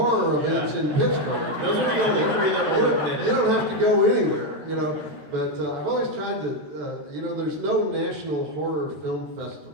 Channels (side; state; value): left; late; 14 ms